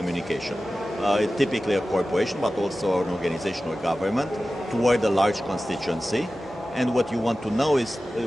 Typically a corporation, but also an organization or government, toward a large constituency. And what you want to know is,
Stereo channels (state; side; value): normal; both; correlation 0.95